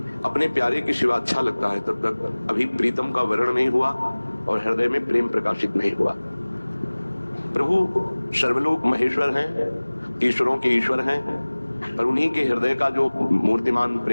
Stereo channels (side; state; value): both; inverted; correlation -1.00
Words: अपने प्यारे के सिवा अच्छा लगता है तब तक अभी प्रीतम का वर्ण नहीं हुआ और हृदय में प्रेम प्रकाशित नहीं हुआ। प्रभु सर्वलोक महेश्वर हैं, ईश्वरों के ईश्वर हैं, पर उन्हीं के हृदय का जो मूर्तिमान